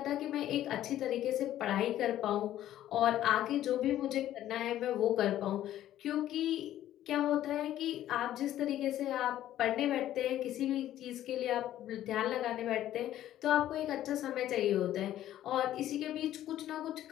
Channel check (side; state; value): right; quieter; 12.7 dB